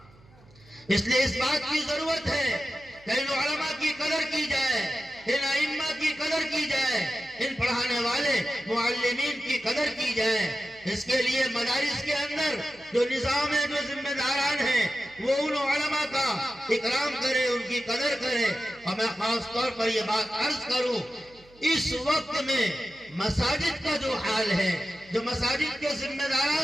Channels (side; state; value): right; noise; hum, 27 dB below the sound